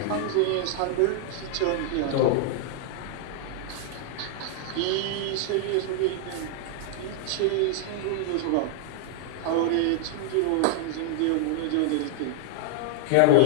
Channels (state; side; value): different; both; correlation -0.01